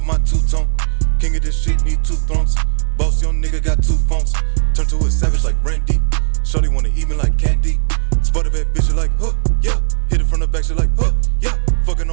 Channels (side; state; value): left; silent; digital silence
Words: my two-tone. King of this shit, need two thrones. Boss young nigga got two phones. Turn to a savage like Randy. Shorty wanna eat me like candy. Spot a bad bitch, like, huh, yeah. Hit it from the back, she like, huh, yeah. Fucking